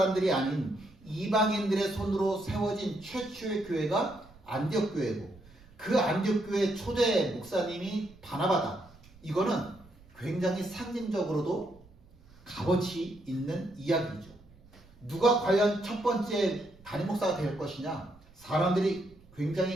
아닌 이방인들의 손으로 세워진 최초의 교회가 안디옥 교회고, 그 안디옥 교회 초대 목사님이 바나바다. 이거는 굉장히 상징적으로도 값어치 있는 이야기죠. 누가 과연 첫 번째 담임 목사가 될 것이냐? 사람들이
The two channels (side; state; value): right; noise; rumble, 25 dB below the sound